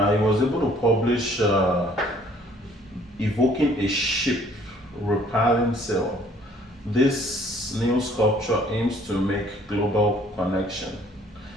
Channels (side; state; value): both; normal; correlation 0.58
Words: able to publish Evoking a Ship Repelling Sail. This new sculpture aims to make global connection.